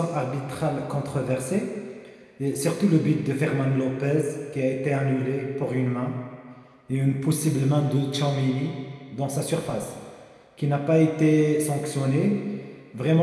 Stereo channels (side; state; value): both; identical; correlation 1.00